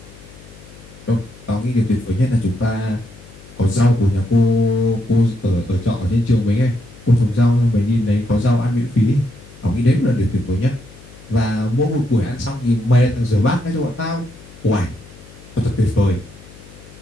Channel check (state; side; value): noise; left; hum, 21 dB below the sound